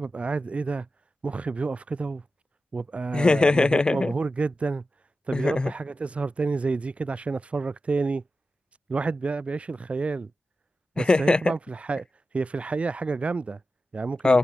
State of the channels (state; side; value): normal; both; correlation 0.92